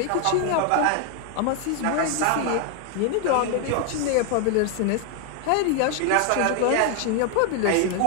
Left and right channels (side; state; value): both; different; correlation 0.01